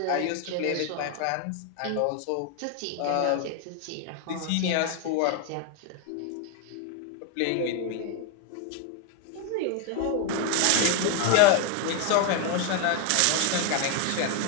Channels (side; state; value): both; different; correlation 0.01